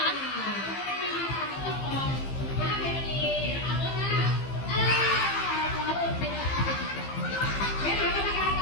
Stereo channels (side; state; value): right; late; 15 ms